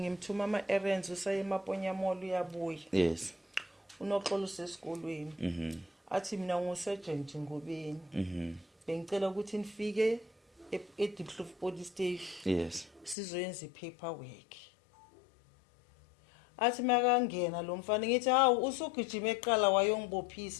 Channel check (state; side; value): drops out; right; at 13.2 s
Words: ama errands usaye eMaponya Mall uyabuya yes uNoxolo usesikolweni athi mina ngusergeant Ngobeni bengicela ukuthi nifike eDiepkloof police station yes sizoyenza ipaperwork athi makangena lo mfana ngithi hawu usugijima eqala